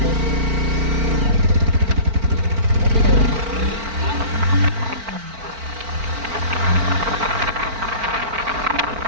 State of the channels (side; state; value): left; late; 4.4 ms